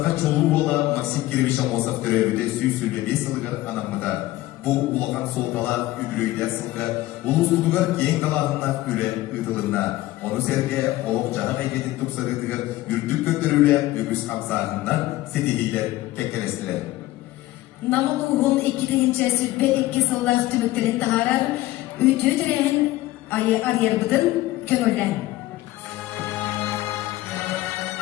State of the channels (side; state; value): right; quieter; 17.0 dB